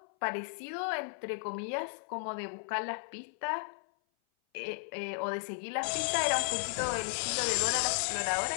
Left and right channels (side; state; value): right; silent; 55 dB below the other